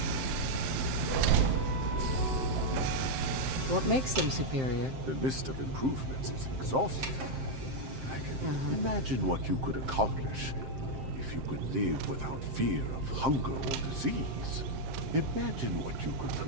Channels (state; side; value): late; left; 7.6 ms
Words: What makes them superior? The list of improvements is exhaustive. I can imagine what you could accomplish if you could live without fear of hunger or disease. Imagine what you could